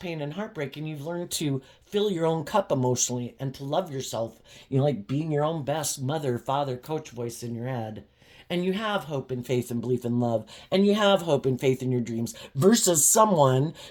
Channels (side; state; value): both; identical; correlation 1.00